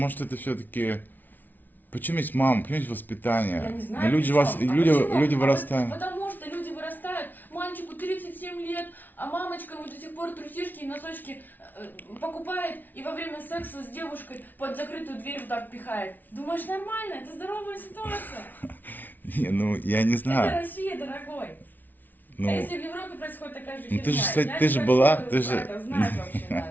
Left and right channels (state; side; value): late; right; 0.085 ms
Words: это все-таки... Почему есть мама, почему есть воспитание? Я не знаю, Ну, люди, при чём. Почему? люди вырастают. Потому что люди вырастают, мальчику 37 лет, а мамочка ему до сих пор трусишки и носочки покупает и во время секса с девушкой под закрытую дверь вот так пихает. Думаешь, нормально? Это здоровая ситуация. Не, ну я не Это знаю. Россия, дорогой. Ну, А если в Европе происходит такая же ну, херня? ты же, кстати, Я ты не же хочу была, это ты же... знать вообще